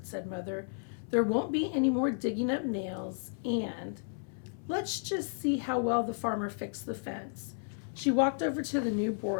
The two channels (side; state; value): right; silent; 56 dB below the other